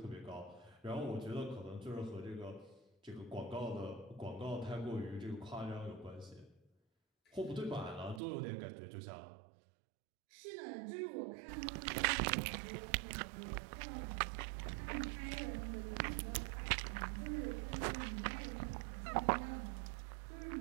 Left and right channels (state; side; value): drops out; left; at 8.2 s